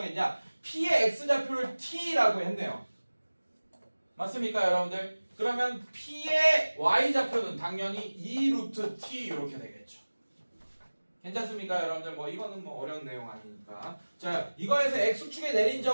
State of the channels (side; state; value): both; inverted; correlation -1.00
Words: p의 x좌표를 t라고 했네요. 맞습니까 여러분들? 그러면 p의 y좌표는 당연히 2 루트 t 이렇게 되겠죠. 괜찮습니까 여러분들? 뭐 이거는 뭐 어려운 내용 아니니까. 자 이거에서 x축에 내린